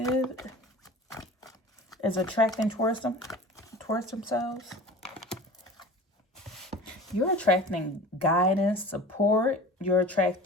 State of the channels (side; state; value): both; normal; correlation 0.39